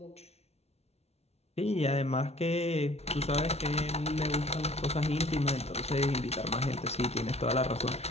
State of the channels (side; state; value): right; late; 0.31 ms